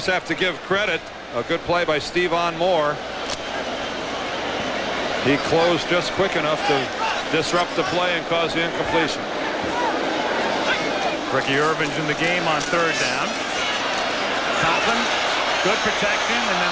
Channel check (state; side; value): identical; both; correlation 1.00